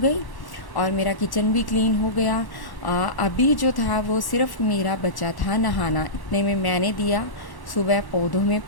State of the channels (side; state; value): right; late; 1.1 ms